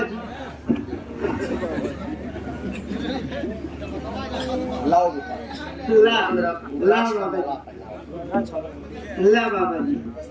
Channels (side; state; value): both; identical; correlation 1.00